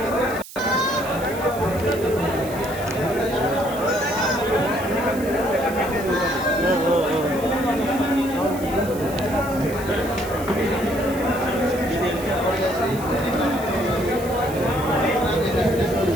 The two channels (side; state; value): right; noise; hiss, 15 dB below the sound